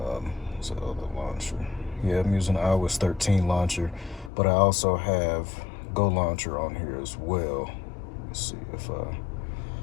the other launcher? Yeah, I'm using iOS 13 launcher, but I also have Go Launcher on here as well. Let's see if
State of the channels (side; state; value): right; drops out; at 4.3 s